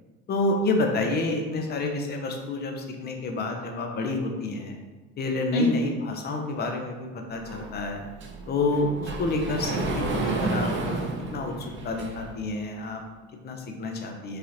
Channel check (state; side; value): normal; both; correlation 0.23